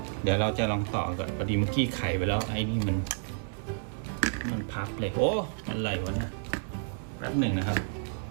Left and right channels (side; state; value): left; silent; 58 dB below the other